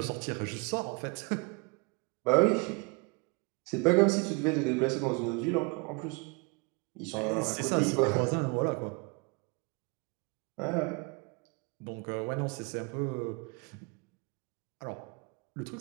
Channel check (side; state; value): left; quieter; 30.7 dB